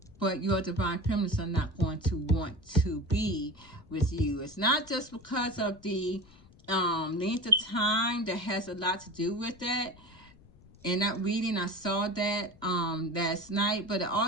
but your divine feminines are not going to want to be with you. It's not just because of the length of time that has a lot to do with that. In that reading, I saw that last night, but it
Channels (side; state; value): left; noise; rumble, 24 dB below the sound